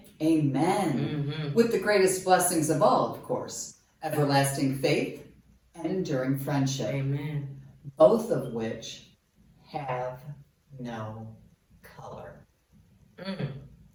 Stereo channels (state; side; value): identical; both; correlation 1.00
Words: Amen. With the greatest blessings of all, of course, everlasting faith and enduring friendship, Amen. both of which have no color.